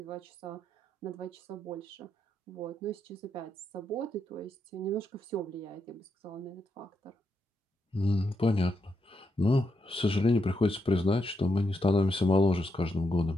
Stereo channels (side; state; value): both; normal; correlation 0.82